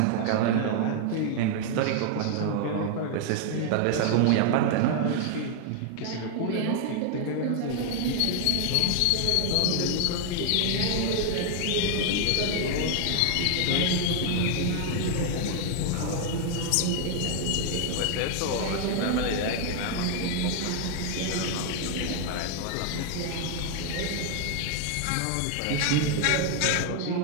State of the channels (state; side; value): different; both; correlation 0.00